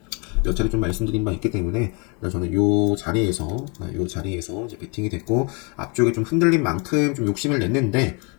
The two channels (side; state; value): right; quieter; 32.5 dB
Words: 몇 차례 좀 말씀드린 바 있기 때문에 저는 요 자리에서 이제 베팅이 됐고 앞쪽에 좀 흔들린 만큼 좀 욕심을 냈는데